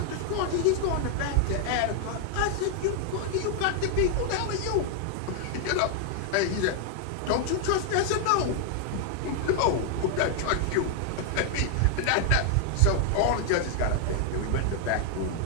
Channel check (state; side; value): different; both; correlation 0.00